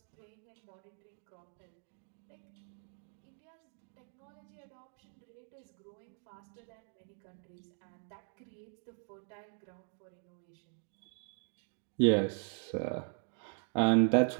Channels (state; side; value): silent; left; 52 dB below the other